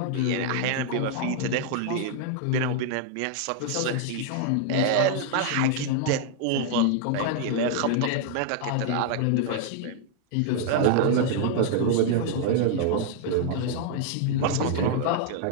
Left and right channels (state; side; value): different; both; correlation 0.00